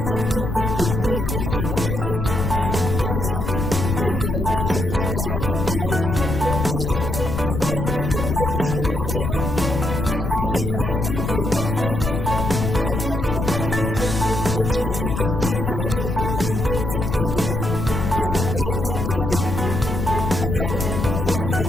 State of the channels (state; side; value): noise; left; rumble, 2 dB below the sound